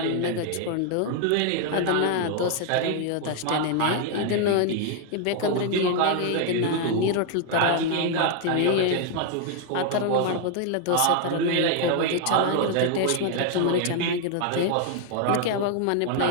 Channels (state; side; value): different; both; correlation 0.00